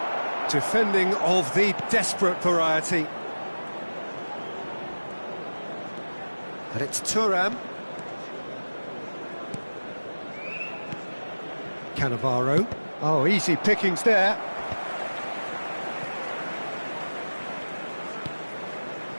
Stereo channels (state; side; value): inverted; both; correlation -1.00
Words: Defending of the desperate variety. But it's Thuram. Cannavaro. Oh, easy pickings there.